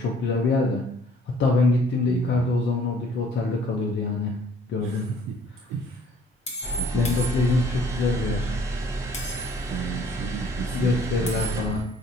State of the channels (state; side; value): normal; both; correlation 0.58